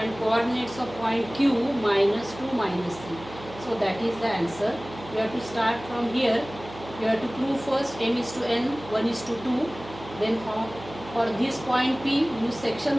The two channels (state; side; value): noise; right; hum, 16 dB below the sound